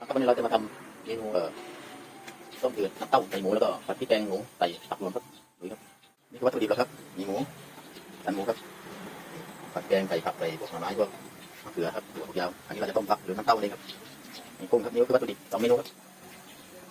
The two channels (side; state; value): both; identical; correlation 1.00